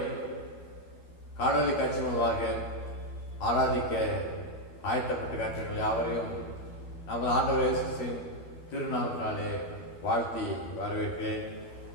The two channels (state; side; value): late; right; 12 ms